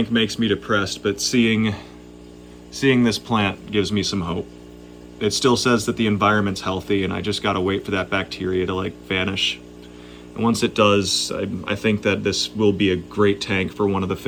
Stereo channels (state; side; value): identical; both; correlation 1.00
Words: makes me depressed, but seeing this plant gives me some hope. It still says that the environment's healthy, and I just gotta wait for that bacteria to vanish. And once it does, I think that this will be a great tank for one of the